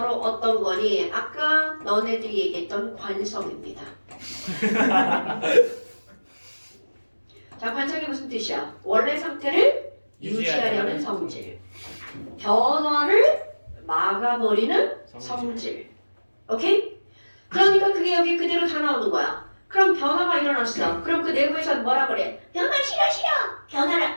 어떤 거니? 아까 너네들이 얘기했던 관성입니다. 자, 관성이 무슨 뜻이야? 원래 상태를 유지하려는 성질. 변화를 막아버리는 성질. 오케이? 그러니까 그게 여기 그대로 다 나오는 거야. 그럼 변화가 일어났어. 그럼 그 내부에서는 뭐라 그래? 변화 싫어. 변화를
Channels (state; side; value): inverted; both; correlation -1.00